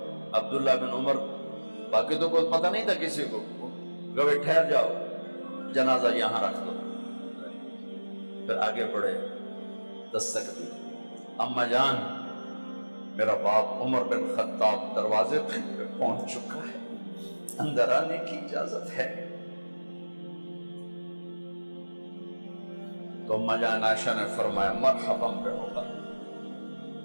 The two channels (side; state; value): both; inverted; correlation -1.00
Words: عبداللہ بن عمر، باقی تو کوئی پتہ نہیں تھا کسی کو، گوے ٹھہر جاؤ جنازہ یہاں رکھ دو، پھر آگے بڑھے، دستک دی، اماں جان میرا باپ عمر بن خطاب دروازے پہ پہنچ چکا ہے، اندر آنے کی اجازت ہے۔ تو اماں جان عائشہ نے فرمایا مرحبا بعمر،